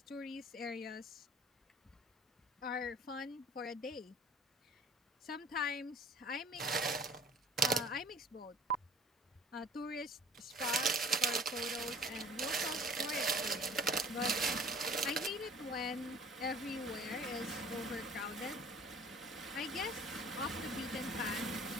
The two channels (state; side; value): normal; both; correlation 0.50